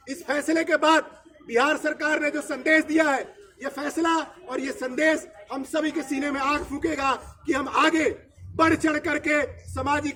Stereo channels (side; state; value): both; identical; correlation 1.00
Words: इस फैसले के बाद बिहार सरकार ने जो संदेश दिया है, ये फैसला और ये संदेश हम सभी के सीने में आग फूकेगा कि हम आगे बढ़ चढ़ करके